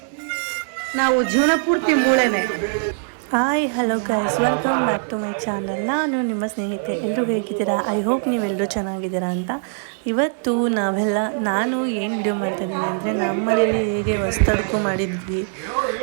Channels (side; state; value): left; silent; 62 dB below the other